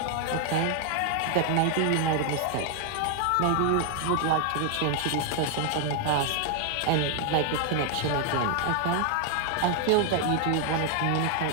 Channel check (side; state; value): both; different; correlation 0.00